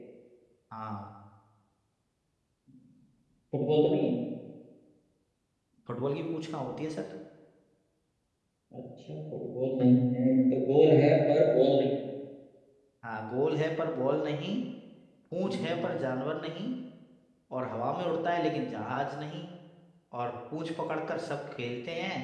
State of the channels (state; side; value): identical; both; correlation 1.00